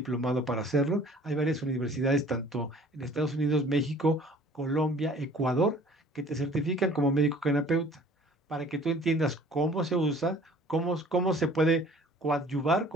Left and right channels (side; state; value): both; normal; correlation 0.51